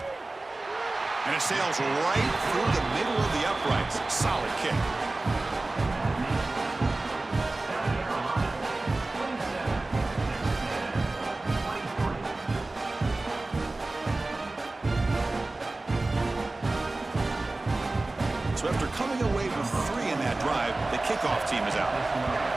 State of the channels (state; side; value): quieter; left; 3.0 dB